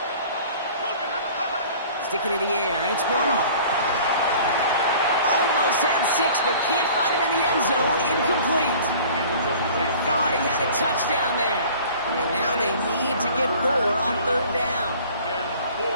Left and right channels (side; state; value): both; inverted; correlation -0.47